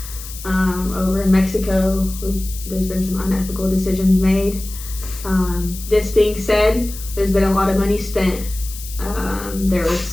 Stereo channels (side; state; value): left; noise; hiss, 13 dB below the sound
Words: over in Mexico. There's been some unethical decisions made. This being said, there's been a lot of money spent. There